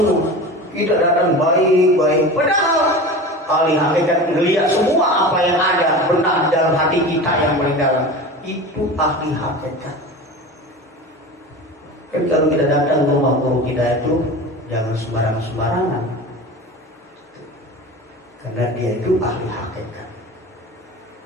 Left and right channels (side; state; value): both; normal; correlation 0.32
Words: Tidak datang baik-baik. Padahal ahli hakikat melihat semua apa yang ada benar dalam hati kita yang paling dalam. Itu ahli hakikat. Kan kalau kita datang ke rumah guru kita itu jangan sembarangan. Karena dia itu ahli hakikat,